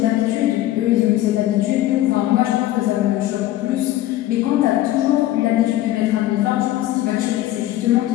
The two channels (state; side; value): quieter; right; 14.7 dB